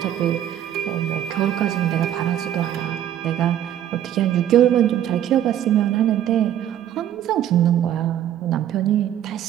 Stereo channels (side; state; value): left; quieter; 11.1 dB